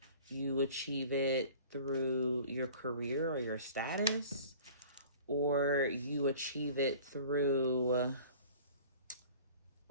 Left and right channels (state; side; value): inverted; both; correlation -0.46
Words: you achieve it through your career or your status, or you achieve it through